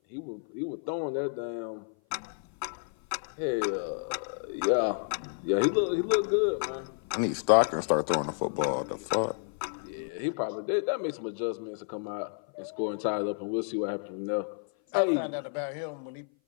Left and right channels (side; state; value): right; silent; 55 dB below the other